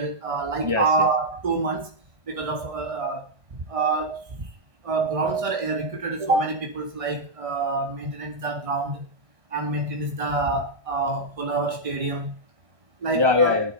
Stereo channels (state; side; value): late; left; 1.6 ms